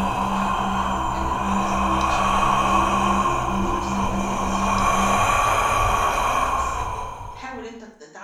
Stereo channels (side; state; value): both; identical; correlation 1.00